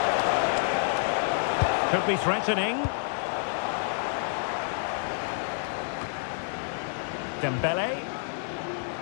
Could be threatening. Dembele.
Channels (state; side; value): silent; right; digital silence